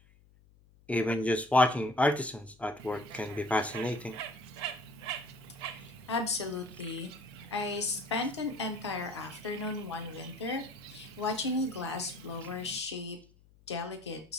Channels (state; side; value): noise; left; hum, 27 dB below the sound